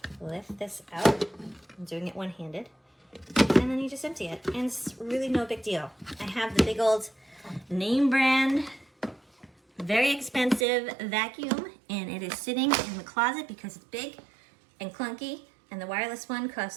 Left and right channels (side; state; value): left; drops out; at 10.7 s